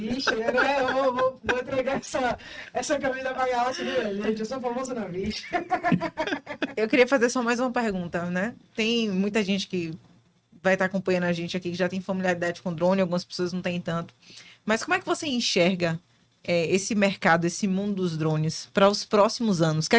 né? Eu vou entregar essa camisa pra Galáxia, né, gente? Eu sou famoso na bicha. Eu queria fazer só mais uma pergunta, né? Tem muita gente que vai estar acompanhando a gente aqui que já tem familiaridade com drone, algumas pessoas não têm tanto. Mas como é que você enxerga esse mercado, esse mundo dos drones para os próximos anos? O que é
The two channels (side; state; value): both; identical; correlation 1.00